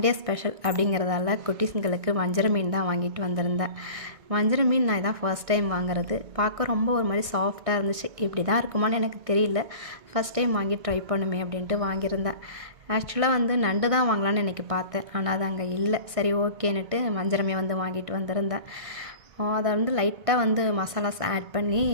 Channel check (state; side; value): late; left; 1.5 ms